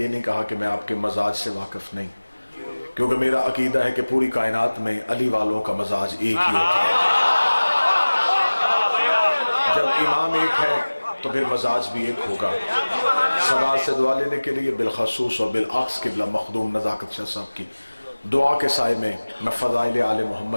نہیں کہا کہ میں آپ کے مزاج سے واقف نہیں، کیونکہ میرا عقیدہ ہے کہ پوری کائنات میں علی والوں کا مزاج ایک ہی ہوتا ہے. جب امام ایک ہے تو پھر مزاج بھی ایک ہوگا. صدا سے دعا لینے کے لیے بالخصوص اور بالعکس قبلہ مخدوم نزاکت شاہ صاحب کی دعا کے سائے میں فضائل آل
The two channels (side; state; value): both; inverted; correlation -1.00